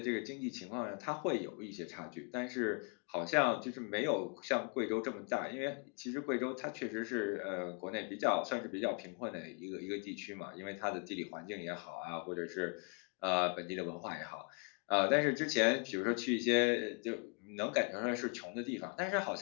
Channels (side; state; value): right; quieter; 35.1 dB